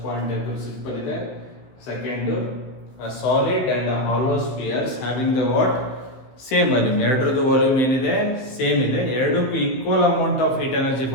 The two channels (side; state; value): right; late; 16 ms